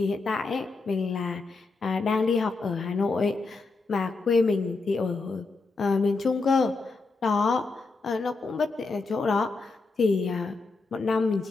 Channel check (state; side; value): quieter; right; 3.9 dB